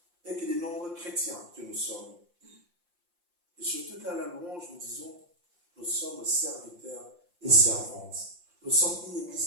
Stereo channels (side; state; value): left; late; 5.7 ms